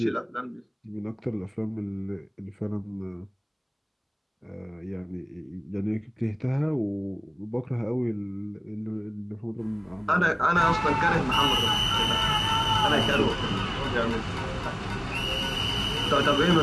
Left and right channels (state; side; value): identical; both; correlation 1.00